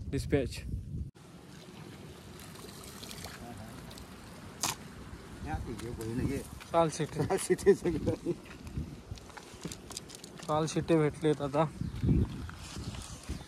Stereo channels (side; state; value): both; identical; correlation 1.00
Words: डिस्पॅच काल शिटे भेटलेत आता.